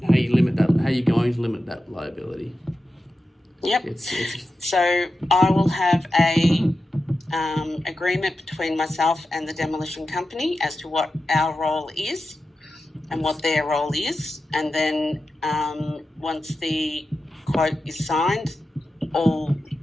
how you limit that. How you're going to limit that liability. Yep. So I will have a agreement between myself and the demolition company as to what our role is and what their role is, and then once the quote is signed, all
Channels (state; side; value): normal; both; correlation 0.91